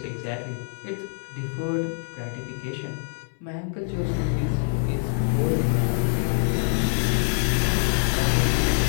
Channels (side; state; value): right; silent; 62 dB below the other